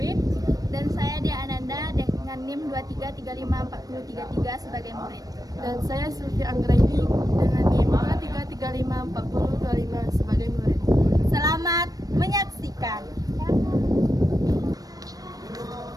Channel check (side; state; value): left; late; 0.18 ms